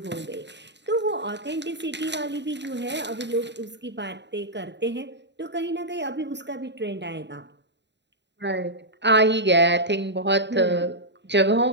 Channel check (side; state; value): left; late; 0.51 ms